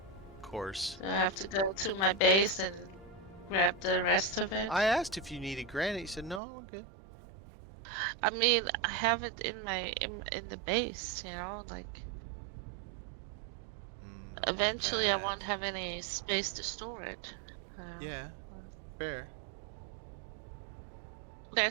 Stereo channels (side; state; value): left; drops out; at 6.4 s